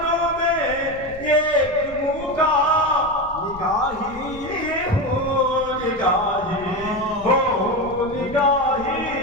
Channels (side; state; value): left; noise; rumble, 18 dB below the sound